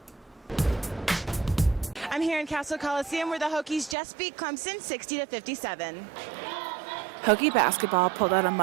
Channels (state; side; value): drops out; left; at 4.0 s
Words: I'm here in Castle Coliseum where the Hokies just beat Clemson 60-57. Hokie basketball pulled out a